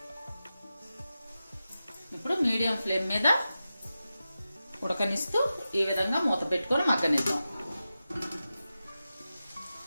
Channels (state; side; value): inverted; both; correlation -0.92